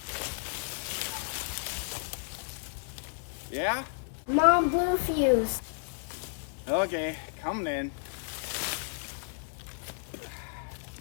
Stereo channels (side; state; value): right; silent; 56 dB below the other